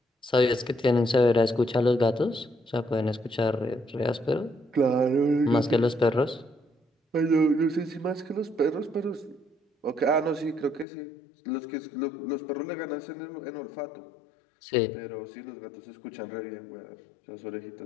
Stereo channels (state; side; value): drops out; right; at 10.9 s